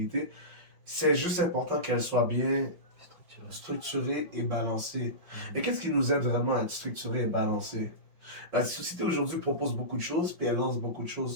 C'est juste important qu'elle soit bien structurée et balancée. Et qu'est-ce qui nous aide vraiment à être structuré et balancé? La société aujourd'hui propose beaucoup de choses, puis elle lance beaucoup de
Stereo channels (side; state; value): left; late; 5.4 ms